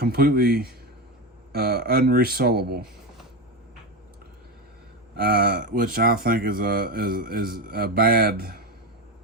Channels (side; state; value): both; normal; correlation 0.16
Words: unresolable, which I think is a bad